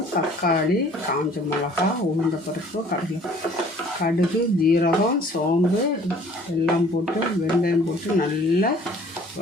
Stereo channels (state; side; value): normal; both; correlation 0.54